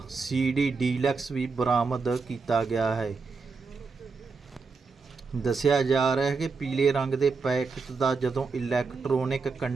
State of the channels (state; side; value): quieter; left; 4.6 dB